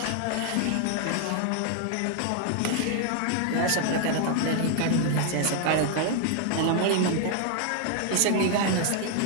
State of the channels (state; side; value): different; both; correlation 0.00